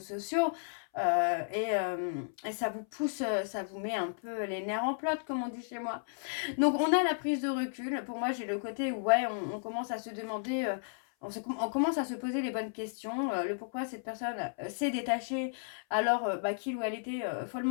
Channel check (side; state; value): right; silent; 55 dB below the other